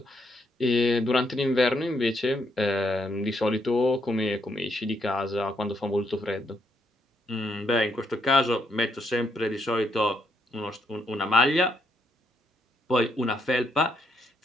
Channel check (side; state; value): both; normal; correlation 0.75